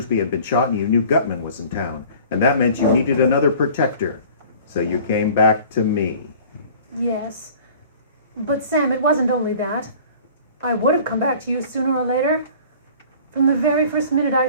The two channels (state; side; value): inverted; both; correlation -0.46